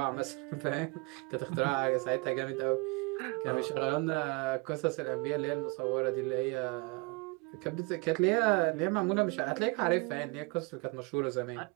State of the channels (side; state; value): left; quieter; 28.4 dB